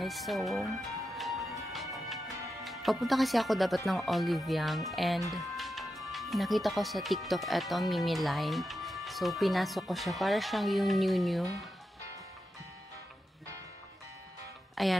So, papunta kasi ako dapat ng Olive Young and nakita ko sa TikTok eto Mimi line. So, pinasok ko siya para siyang yung new.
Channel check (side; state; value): both; normal; correlation 0.88